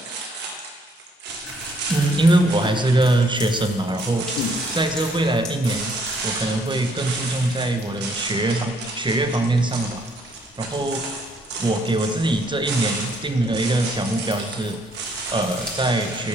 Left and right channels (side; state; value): both; normal; correlation 0.67